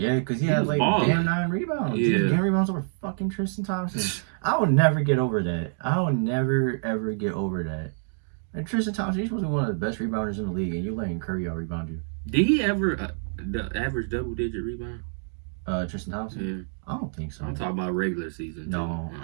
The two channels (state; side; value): silent; left; digital silence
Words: because he had damn 9 rebounds. Yeah, damn rebounds over fucking Tristan Thompson. I will never get over that. I will never ever get over that. And Tristan Thompson, he's supposed to be one of the best rebounders in the league, and you letting Curry out rebound you. Did he ever average double-digit rebound? Tristan Thompson? Yeah. I don't think so. I'm talking about regular season. No,